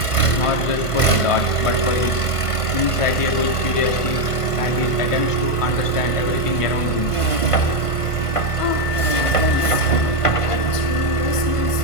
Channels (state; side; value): late; right; 1.5 ms